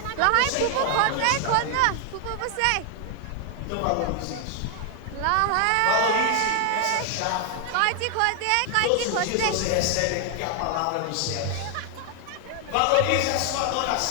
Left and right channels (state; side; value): different; both; correlation 0.00